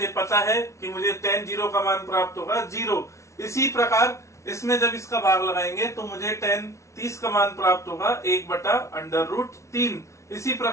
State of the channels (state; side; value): late; right; 0.14 ms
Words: पता है कि मुझे टेन जीरो का मान प्राप्त होगा 0। इसी प्रकार इसमें जब इसका भाग लगाएंगे तो मुझे टेन 30 का मान प्राप्त होगा 1/√3। इसी